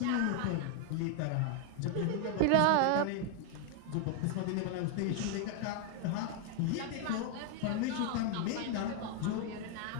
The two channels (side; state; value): both; different; correlation 0.00